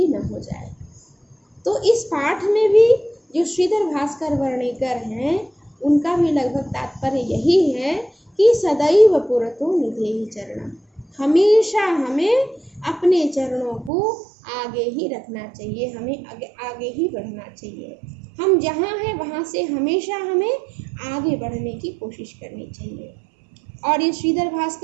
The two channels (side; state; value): left; drops out; at 13.9 s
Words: न हो जाए। तो इस पाठ में भी जो श्रीधर भास्कर वर्णेकर हैं, उनका भी लगभग तात्पर्य यही है कि सदैव पुरतो निधेहि चरणम, हमेशा हमें अपने चरणों को आगे ही रखना चाहिए, हमें आगे ही बढ़ना चाहिए। हम जहाँ हैं वहाँ से हमेशा हमें आगे बढ़ने की कोशिश करनी चाहिए। और ये श्रीधर